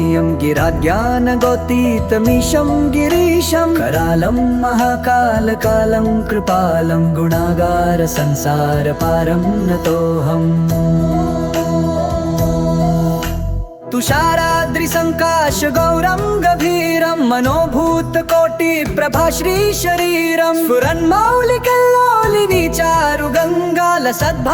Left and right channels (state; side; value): identical; both; correlation 1.00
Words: गिराज्ञानगोतीतमीशं गिरीशं करालं महाकालकालं कृपालं गुणागार संसारपारं नतोऽहम् तुषाराद्रिसङ्काश गौरं गभीरं मनोभूतकोटिप्रभाश्रीशरीरं स्फुरन्मौलिकल्लोलिनी चारुगङ्गा